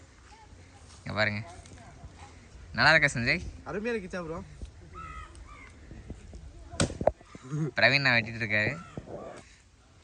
இங்கே பாருங்க, நல்லா இருக்கா சஞ்சய்? அருமையாக இருக்கு சாப்பிடுவோம். பிரவீன் நான் வெட்டிட்டு இருக்காரு.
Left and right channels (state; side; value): identical; both; correlation 1.00